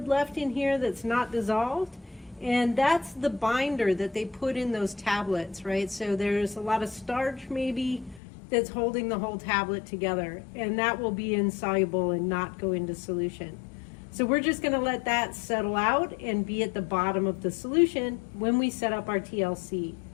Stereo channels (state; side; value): drops out; right; at 8.2 s